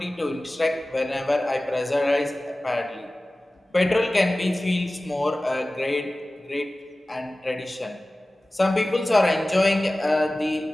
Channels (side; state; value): both; normal; correlation 0.97